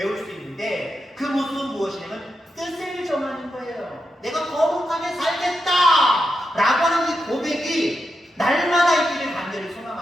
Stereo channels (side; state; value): both; normal; correlation 0.87